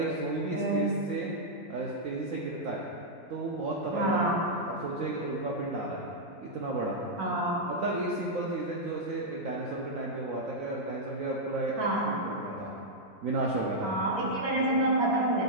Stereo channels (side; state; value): both; normal; correlation -0.06